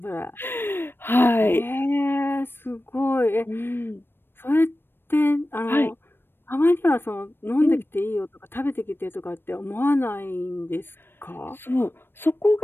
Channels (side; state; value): right; late; 0.10 ms